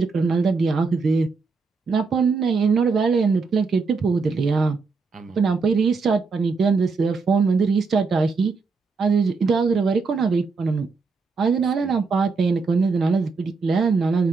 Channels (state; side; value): quieter; left; 4.5 dB